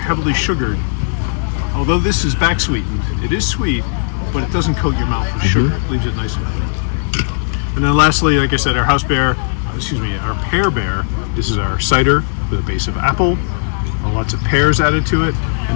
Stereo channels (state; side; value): silent; right; digital silence